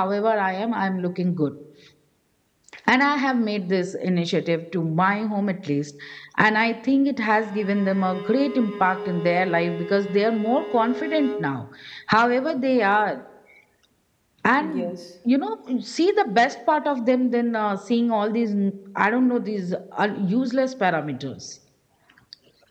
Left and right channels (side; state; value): both; identical; correlation 1.00